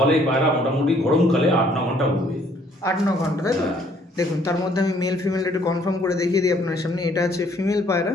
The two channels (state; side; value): normal; both; correlation 0.63